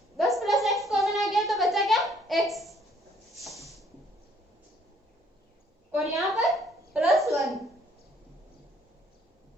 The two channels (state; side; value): normal; both; correlation 0.63